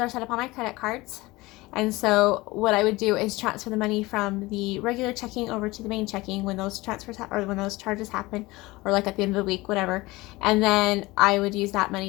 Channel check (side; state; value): right; quieter; 21.0 dB